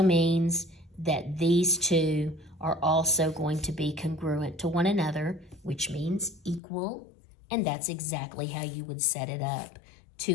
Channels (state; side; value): drops out; right; at 6.6 s